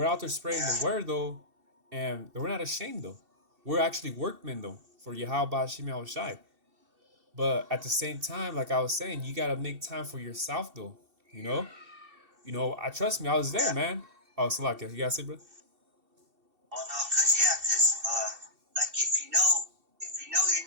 out there spreading the Yeah. word though, and we're not ashamed though. We're actually workmen though for Yahweh Shem Shai. But at the same time, like I was saying, you gotta make time for yourself though. You know. I trust me. I was there, Yeah. man. Oh, Salakia, you gotta say, bro. Oh no, cause like if you know you're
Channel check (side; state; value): left; late; 2.7 ms